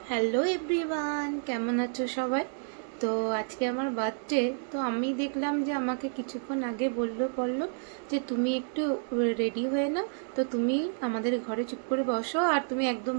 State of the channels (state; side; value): silent; left; digital silence